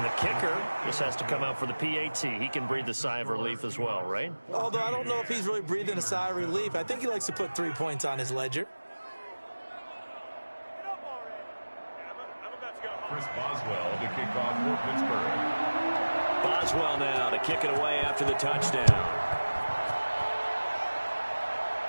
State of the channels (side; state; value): both; inverted; correlation -1.00